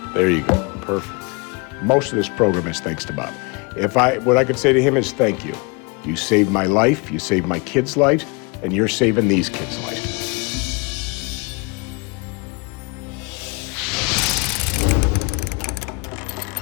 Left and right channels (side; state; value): right; quieter; 30.1 dB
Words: There you go, perfect. Most of this program is thanks to Bob. What I could say to him is thank you. You saved my life, you saved my kids' lives, and you're saving these kids' lives.